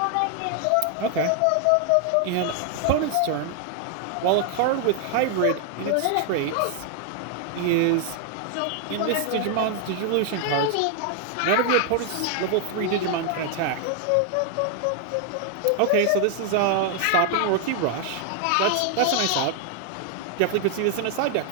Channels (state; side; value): different; both; correlation 0.00